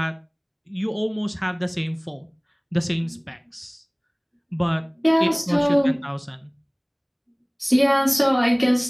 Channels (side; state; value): both; identical; correlation 1.00